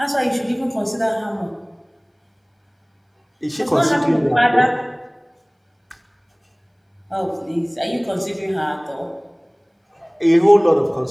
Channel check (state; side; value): identical; both; correlation 1.00